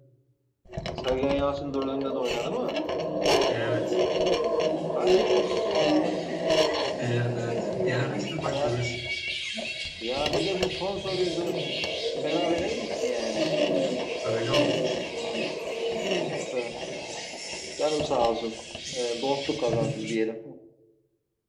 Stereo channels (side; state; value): both; identical; correlation 1.00